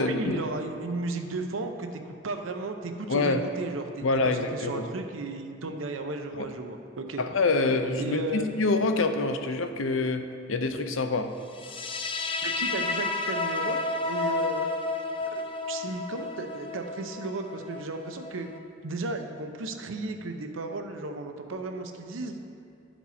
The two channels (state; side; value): normal; both; correlation 0.02